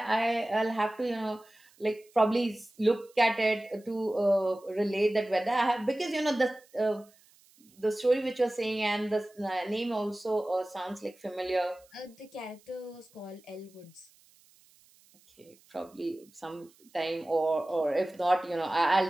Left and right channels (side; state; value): right; noise; hiss, 29 dB below the sound